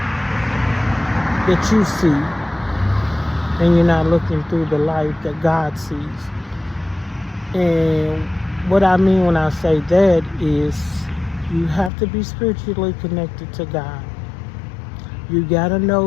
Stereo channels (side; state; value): right; drops out; at 11.9 s